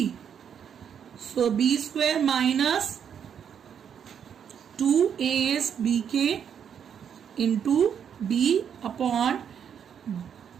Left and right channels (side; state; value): left; quieter; 8.1 dB